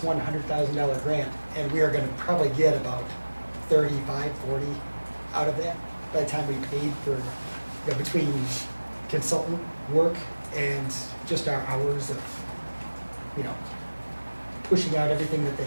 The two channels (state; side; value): inverted; both; correlation -1.00